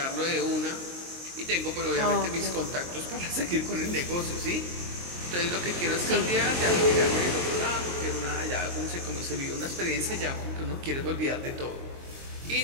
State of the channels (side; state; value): left; late; 23 ms